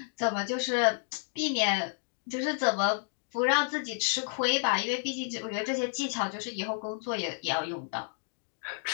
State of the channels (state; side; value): silent; right; digital silence